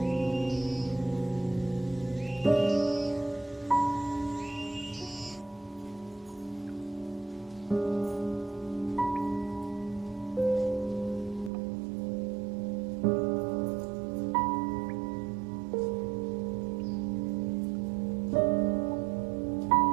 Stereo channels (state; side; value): drops out; left; at 11.5 s